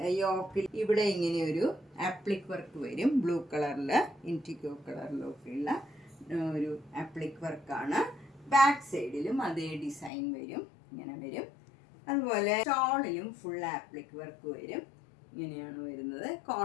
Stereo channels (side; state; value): right; drops out; at 10.1 s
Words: യോക്കിൽ ഇവിടെ ഇങ്ങനെ ഒരു ആപ്ലിക് വർക്ക് വരും. ബ്ലൂ കളറിൽ ഇൻറ്റിക്കോ കളറിലൊക്കെയുള്ള ഒരു ആപ്ലിക് വർക്കാണ്. ബാക്ക് സൈഡിലും അതേ ഡിസൈൻ വരും. ഇങ്ങനെ വരും. അതുപോലെ ഷോളിലും ഫുൾ ആപ്ലിക് വർക്ക് വരും. ഇങ്ങനെയാണ് വരുന്നത്.